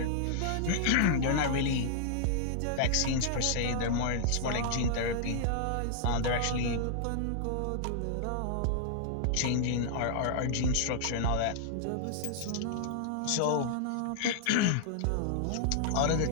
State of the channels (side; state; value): both; different; correlation -0.01